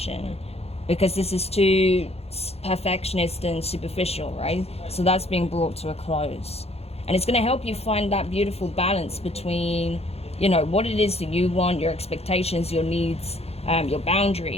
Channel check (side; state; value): right; late; 0.29 ms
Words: because this is too perfectionist and superficial, right? So that's being brought to a close. And it's going to help you find that beautiful balance between, you know, what it is that you want, your expectations, your needs, your